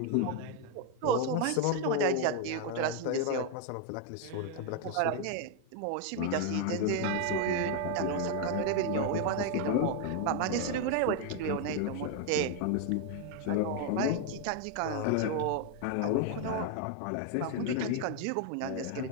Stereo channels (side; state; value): both; different; correlation 0.01